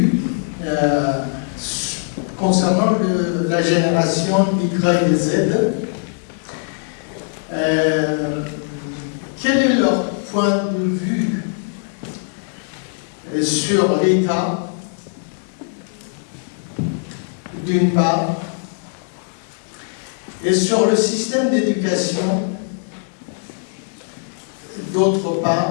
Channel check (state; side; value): silent; right; 65 dB below the other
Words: concernant la génération Y et Z. Quel est leur point de vue sur l'État, d'une part, et sur le système d'éducation, d'autre